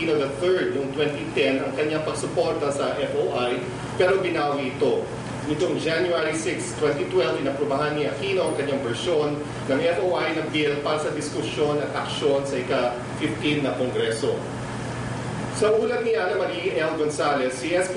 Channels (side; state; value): both; identical; correlation 1.00